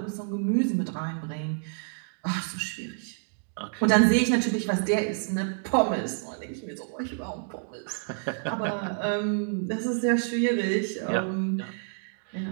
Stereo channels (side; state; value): left; silent; 59 dB below the other